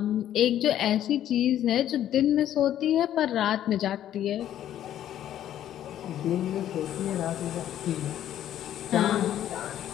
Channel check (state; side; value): quieter; right; 11.4 dB